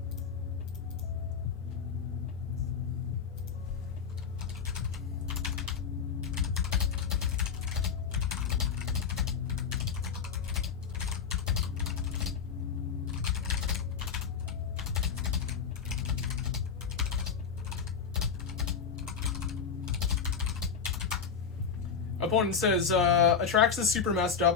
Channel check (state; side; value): quieter; right; 6.4 dB